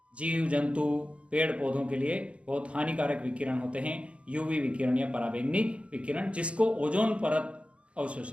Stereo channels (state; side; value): late; left; 0.061 ms